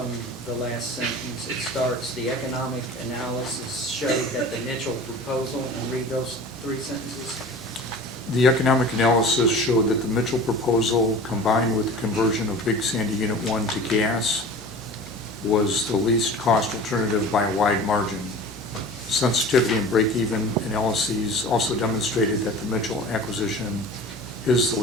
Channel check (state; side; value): normal; both; correlation 0.39